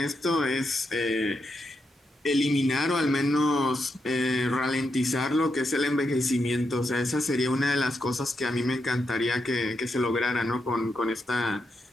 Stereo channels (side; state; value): both; normal; correlation 0.83